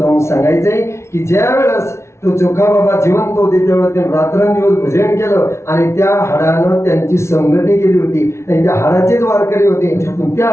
सांगायचंय की ज्या वेळेस तो चोखा बाबा जिवंत होते त्यावेळेस त्यांनी रात्रंदिवस भजन केलं आणि त्या हाडानं त्यांची संगती केली होती आणि त्या हाडाचेच वारकरी होते. त्या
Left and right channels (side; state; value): right; late; 0.13 ms